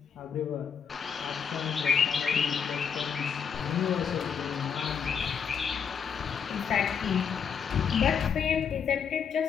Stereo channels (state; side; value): quieter; right; 7.0 dB